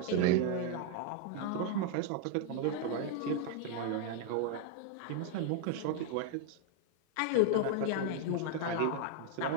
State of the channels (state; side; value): different; both; correlation 0.00